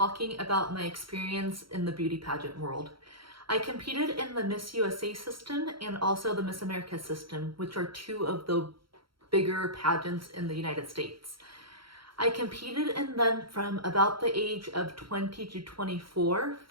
about my experience in the beauty pageant world. I competed in the Miss USA system and also the Miss America system, which are two of the bigger pageants in the United States. I competed in them from about the age of 20 to 24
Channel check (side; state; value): left; late; 0.74 ms